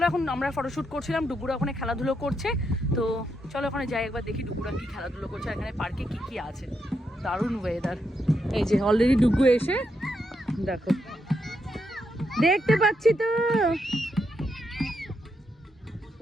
এখন আমরা ফটোশ্যুট করছিলাম, ডুগুরা ওখানে খেলাধুলো করছে। তো চলো ওখানে যাই, একবার দেখি ডুগুরা কি খেলাধুলো করছে, এখানে পার্কে কি কি আছে। দারুণ ওয়েদার। এই যে অলরেডি ডুগু এসে দেখো, দেখতে পাচ্ছি তো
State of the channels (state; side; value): normal; both; correlation 0.81